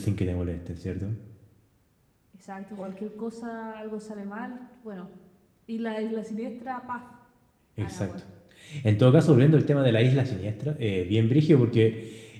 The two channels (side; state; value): both; identical; correlation 1.00